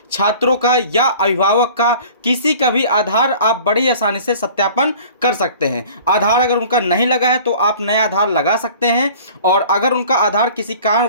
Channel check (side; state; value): both; inverted; correlation -0.46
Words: छात्रों का या अभिभावक का किसी का भी आधार आप बड़ी आसानी से सत्यापन कर सकते हैं। आधार अगर उनका नहीं लगा है तो आप नया आधार लगा सकते हैं, और अगर उनका आधार किसी